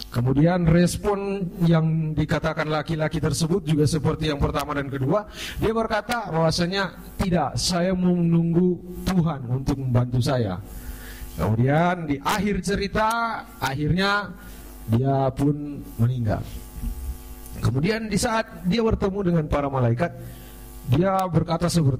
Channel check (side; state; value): both; identical; correlation 1.00